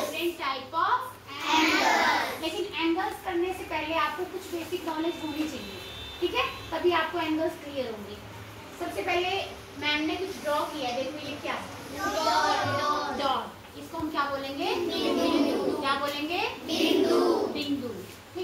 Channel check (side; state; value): both; identical; correlation 1.00